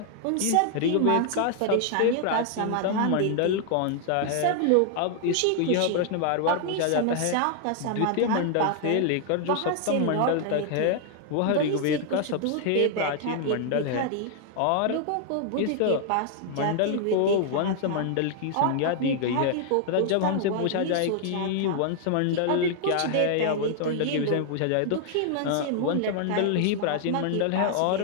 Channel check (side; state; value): both; different; correlation 0.00